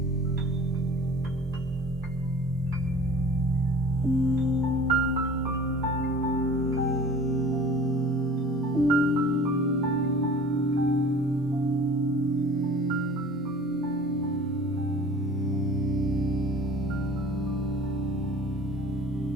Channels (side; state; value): both; normal; correlation 0.45